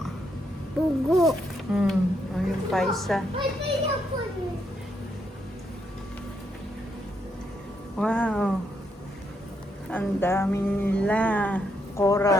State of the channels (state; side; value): normal; both; correlation 0.77